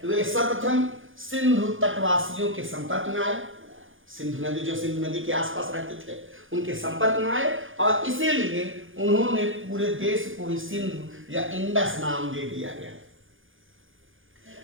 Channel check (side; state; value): left; late; 0.58 ms